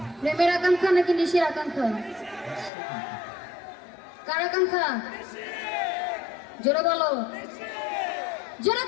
প্রেমের আকাঙ্ক্ষা নাকি নিশের আকাঙ্ক্ষা? কার আকাঙ্ক্ষা? জোরে বলো, জোরে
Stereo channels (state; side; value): drops out; right; at 2.7 s